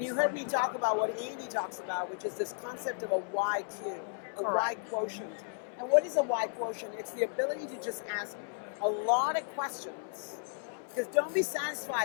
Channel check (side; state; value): right; silent; 55 dB below the other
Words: you heard me talk about what Andy talks about, which is this concept of a YQ, a Y quotient. And what is a Y quotient? It's the ability to just ask a lot of questions, because don't be